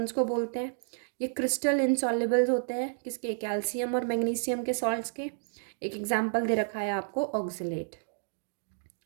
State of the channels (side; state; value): left; silent; digital silence